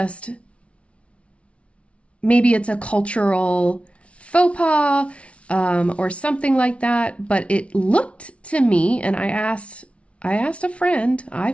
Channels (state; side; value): late; right; 0.062 ms